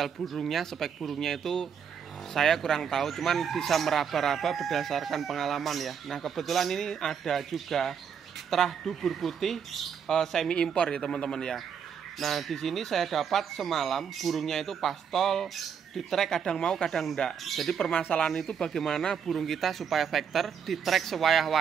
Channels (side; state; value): left; quieter; 7.4 dB